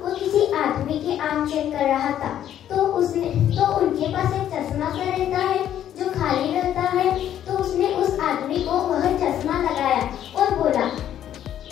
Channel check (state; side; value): quieter; right; 10.8 dB